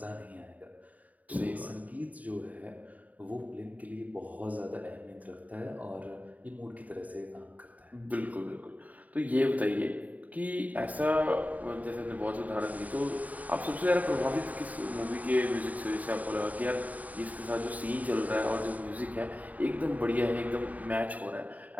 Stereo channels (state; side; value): late; left; 0.073 ms